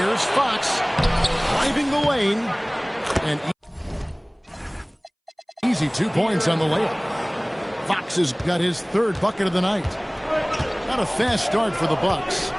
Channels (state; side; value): identical; both; correlation 1.00